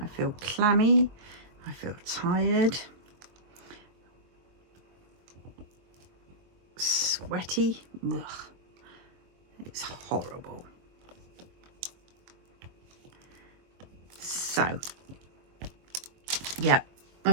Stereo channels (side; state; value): left; late; 22 ms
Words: feel clammy, I feel tired, sweaty. Ugh. It's horrible. So, yeah,